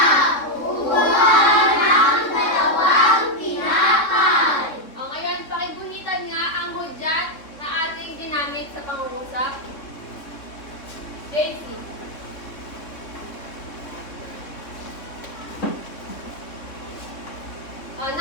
upuan ng dalawang tinapay. O ngayon, pakibunitan nga ang hudyat na ating ginamit sa pangungusap. Daisy. O,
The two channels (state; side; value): late; right; 3.6 ms